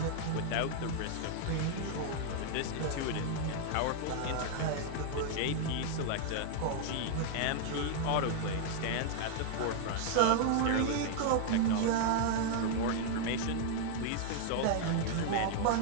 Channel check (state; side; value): different; both; correlation -0.01